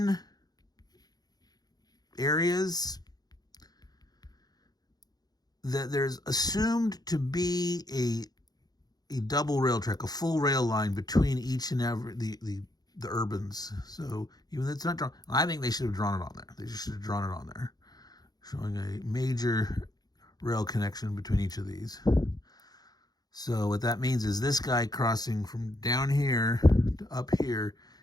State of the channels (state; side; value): late; right; 0.19 ms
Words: areas, that there's assumed to be a double rail track, a full rail line between each and every the urbans. So even though it's not drawn, I think they should have drawn it on there. They just should have drawn it on there, showing a major rail connection between each of these. So what that means is this guy crossing from down here to up here